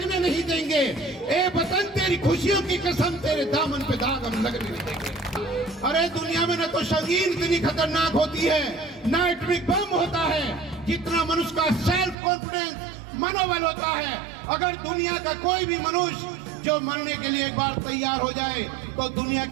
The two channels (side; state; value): left; drops out; at 12.2 s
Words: नहीं देंगे। ए वतन तेरी खुशियों की कसम, तेरे दामन पे दाग हम लगने नहीं देंगे। अरे दुनिया में न तो संगीन इतनी खतरनाक होती है, न एटॉमिक बम होता है, जितना मनुष्य का सेल्फ कॉन्फिडेंस, मनोबल होता है। अगर दुनिया का कोई भी मनुष्य जो मरने के लिए एक बार तैयार हो जाए तो दुनिया